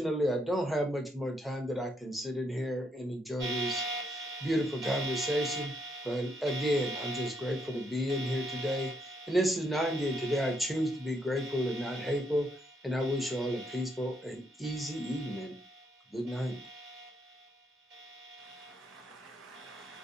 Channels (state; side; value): normal; both; correlation 0.75